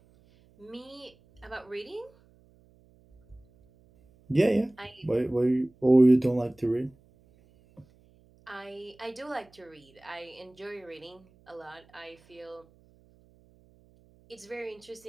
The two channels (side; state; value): right; noise; hum, 30 dB below the sound